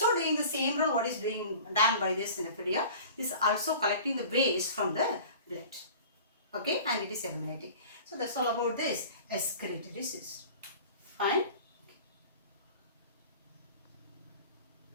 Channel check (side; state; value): both; inverted; correlation -0.42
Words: doing the same role what is done by this nephridia. This is also collecting the waste from the blood. Okay, and it is eliminating. So that's all about this excretory system. Fine.